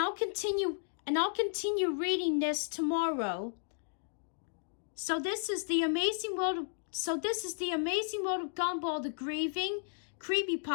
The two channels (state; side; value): silent; right; digital silence